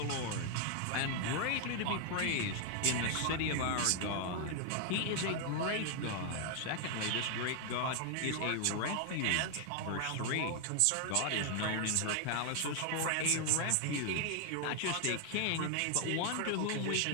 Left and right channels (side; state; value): both; different; correlation 0.00